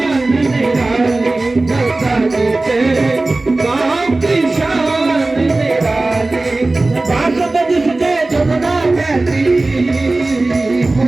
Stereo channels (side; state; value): left; quieter; 3.1 dB